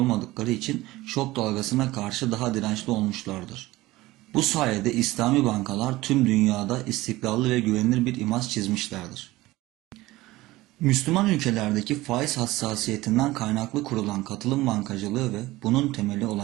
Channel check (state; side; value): quieter; left; 18.5 dB